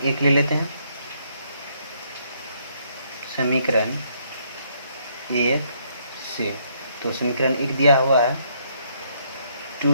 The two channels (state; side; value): inverted; both; correlation -0.70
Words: 1 ले लेते हैं। समीकरण 1 से तो समीकरण 1 दिया हुआ है